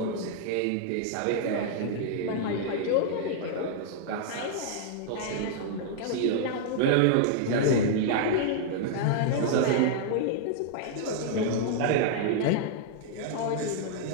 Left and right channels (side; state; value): both; different; correlation -0.01